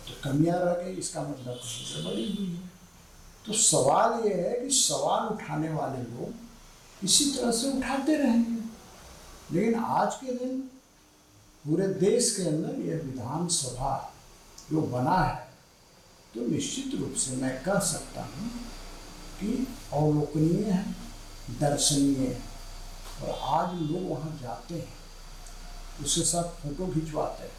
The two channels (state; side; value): identical; both; correlation 1.00